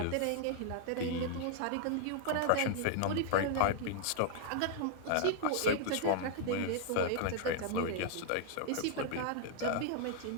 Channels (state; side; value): different; both; correlation -0.01